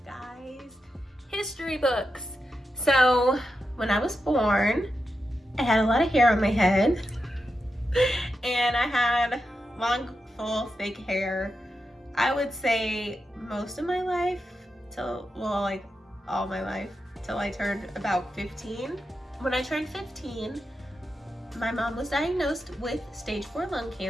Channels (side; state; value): both; normal; correlation 0.88